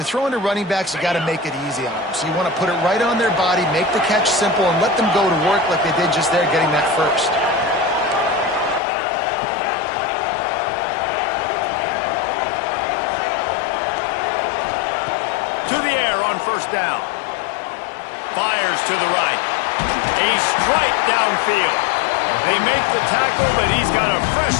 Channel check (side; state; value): right; drops out; at 8.8 s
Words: throwing to running backs, you got to make it easy on them. So you want to put it right on their body, make the catch simple, and let them go to work like they did just there, getting that first. To the air on 1st down. Fires to the right. A strike downfield. They make the tackle, but he's got a fresh